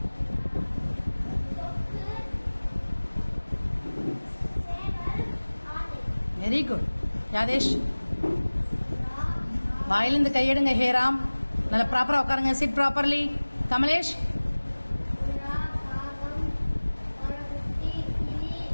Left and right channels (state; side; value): inverted; both; correlation -1.00